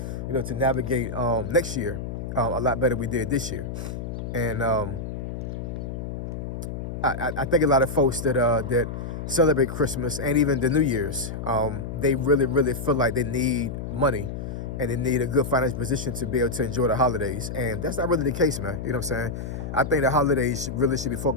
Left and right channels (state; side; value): noise; left; hum, 6 dB below the sound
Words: you know, to navigate next year a lot better than we did this year. And I think a lot of folks that celebrate Christmas and even the New Year's, they really feel like they need money and they need a good financial position to be able to enjoy the holidays. And that's not really the case, man. You know what I'm saying? I think the holidays really should be